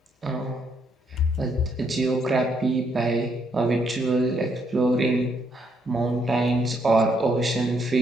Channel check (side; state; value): both; normal; correlation 0.74